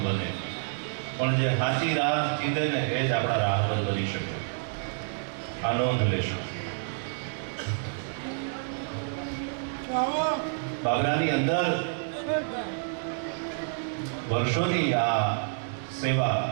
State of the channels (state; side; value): silent; left; digital silence